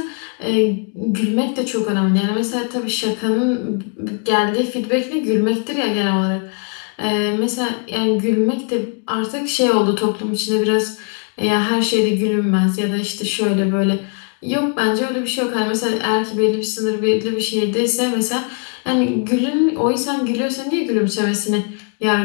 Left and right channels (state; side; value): quieter; right; 37.9 dB